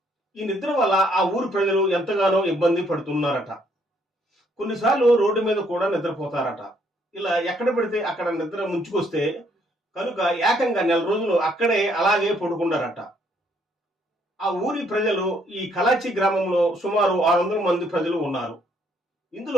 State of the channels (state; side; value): normal; both; correlation 0.68